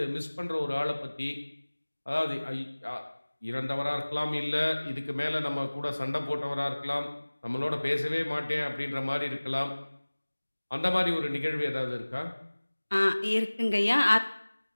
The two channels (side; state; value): both; inverted; correlation -1.00